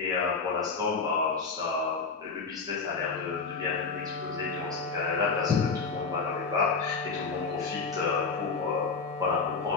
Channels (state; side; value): quieter; right; 4.7 dB